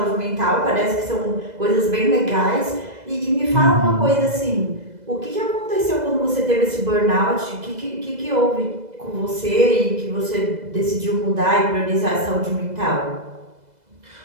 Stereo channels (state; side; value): late; left; 2.0 ms